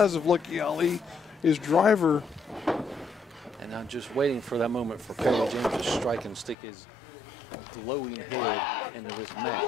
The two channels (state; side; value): drops out; right; at 6.6 s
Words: of Lucky Ali, his Driver. And I'm just waiting for that moment for Perry James to strike and stick his glowing head into this match.